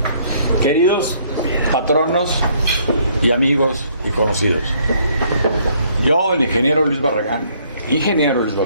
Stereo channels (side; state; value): both; inverted; correlation -0.65